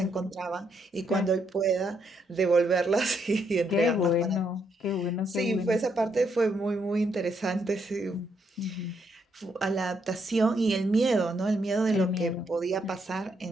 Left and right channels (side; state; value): both; normal; correlation 0.76